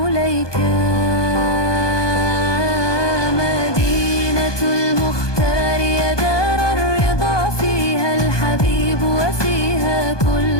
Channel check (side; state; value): right; late; 1.2 ms